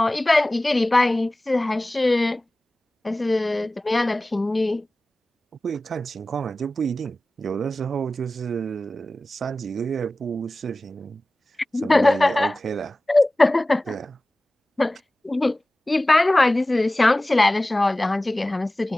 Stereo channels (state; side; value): normal; both; correlation 0.97